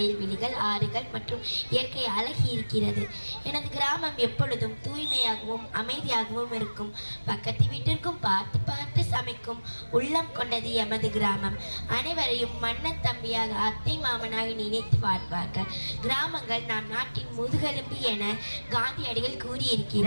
ஆறுகள் மற்றும் இயற்கை அழகி இருக்கிறது. எனது கிராமம் எப்பொழுதும் தூய்மையாகவும் அமைதியாகவும் இருக்கும். பக்கத்து வீட்டிற்கும் பார்த்து பார்த்து சமைக்கும் உள்ளம் கொண்டது எமது கிராமம். அனைவரையும் மன்னன் தம்பியாக, அத்தை மாமனாக நினைத்து வாழ்வார்கள். கிராமங்கள் நாம் நாட்டின் முதுகெலும்பு என காந்தியடிகள்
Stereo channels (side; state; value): both; inverted; correlation -1.00